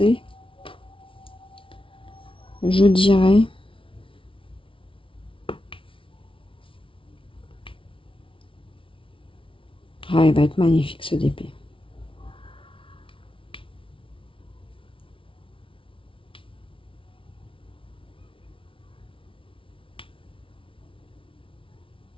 Je dirais. Ah, il va être magnifique ce DP.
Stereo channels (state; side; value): late; right; 0.25 ms